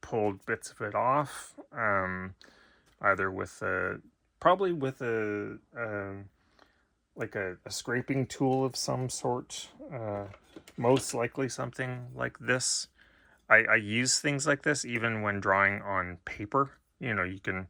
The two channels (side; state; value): both; identical; correlation 1.00